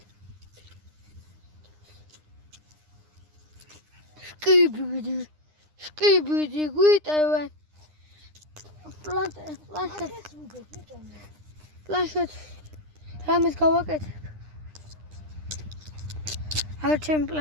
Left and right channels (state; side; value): late; left; 9.8 ms